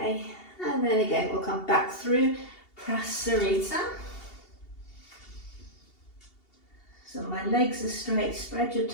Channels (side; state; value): right; late; 2.7 ms